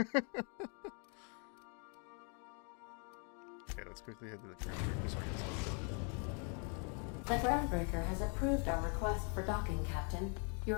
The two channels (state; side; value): quieter; right; 38.6 dB